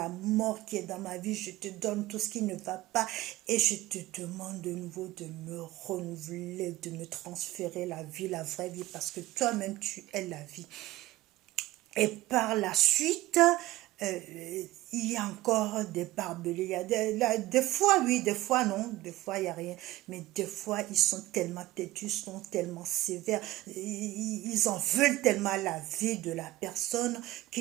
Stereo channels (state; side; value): quieter; left; 16.7 dB